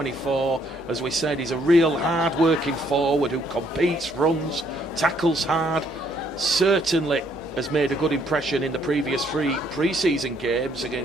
As we said, he's a real hard-working forward who competes, runs, tackles hard. Certainly has made a good impression in the previous 3 pre-season games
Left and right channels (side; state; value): right; noise; hum, 27 dB below the sound